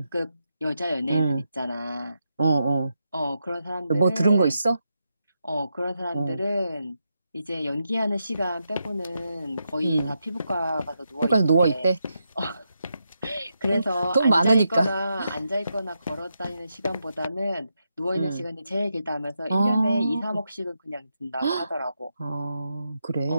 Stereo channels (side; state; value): both; inverted; correlation -0.85